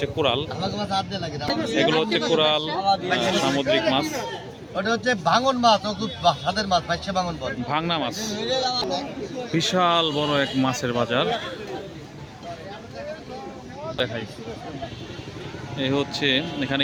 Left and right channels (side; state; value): both; identical; correlation 1.00